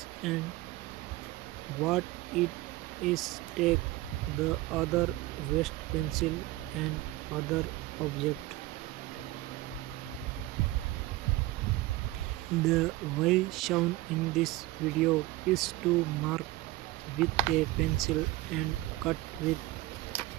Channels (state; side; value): quieter; left; 17.9 dB